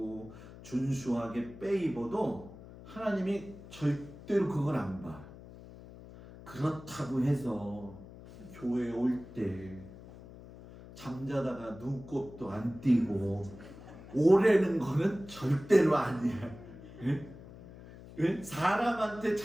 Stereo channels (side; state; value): left; noise; hum, 17 dB below the sound